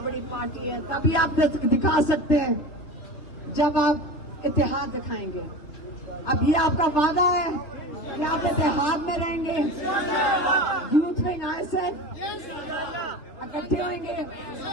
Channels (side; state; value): right; late; 3.1 ms